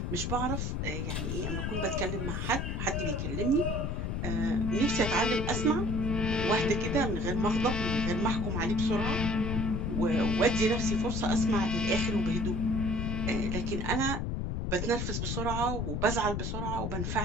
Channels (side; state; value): left; noise; rumble, 1 dB below the sound